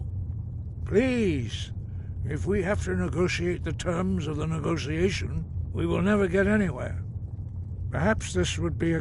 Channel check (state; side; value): identical; both; correlation 1.00